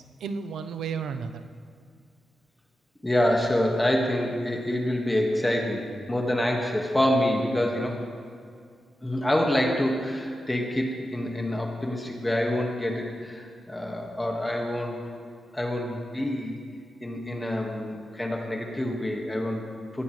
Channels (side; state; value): both; normal; correlation 0.91